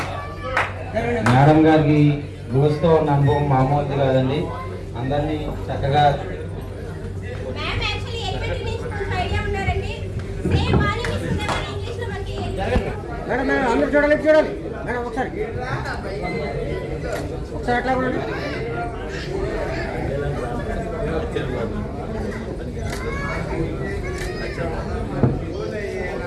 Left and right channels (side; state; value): both; identical; correlation 1.00